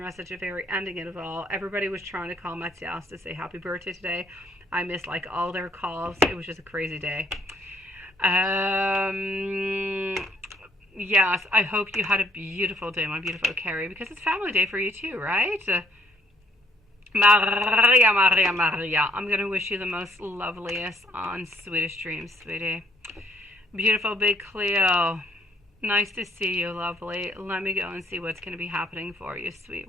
at the very ending of it all. Everybody was trying to call Matthias to say happy birthday today. I missed like all their calls. It was just a crazy day. Yes, I hope you had a beautiful day, my beautiful Carrie, because it's family day for you too, right? Maria, Maria, Maria. I'm going to wish you the most loveliest and sweetest dreams, sweetie. Beautiful big Cleo. Nice to see you, lovely. Let me go and see what's going to be happening for you,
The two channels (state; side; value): normal; both; correlation 0.65